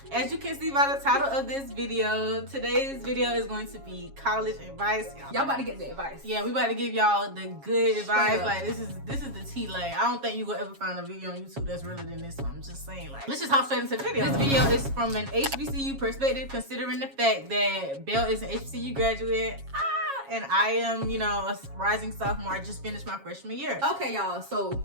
As you can see by the title of this video, today's video is going to be college advice. Y'all about to get the advice. Yeah, we about to give y'all the good advice. up. Like this is the tea. Like I don't think you will ever find a video on YouTube that's realer than this one. I'm just saying. Like let's just hop straight into the video. This video is from an HBCU perspective, considering the fact that Belle is an HBCU graduate. And I am, you know, a rising sophomore. I just finished my freshman year. Okay, y'all. So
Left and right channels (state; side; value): late; left; 7.3 ms